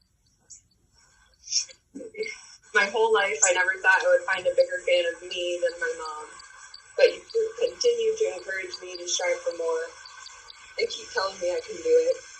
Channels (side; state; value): both; identical; correlation 1.00